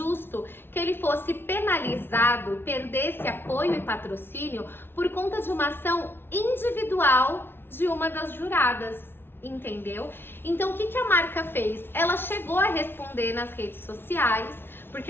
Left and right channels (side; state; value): right; late; 0.11 ms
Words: que ele fosse penalizado, perdesse apoio e patrocínio por conta de uma ação individual de uma das juradas, entendeu? Então o que a marca fez? Ela chegou a responder nas redes sociais, porque